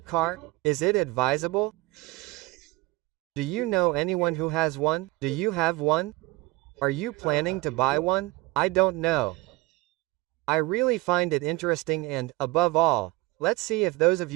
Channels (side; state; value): left; quieter; 21.0 dB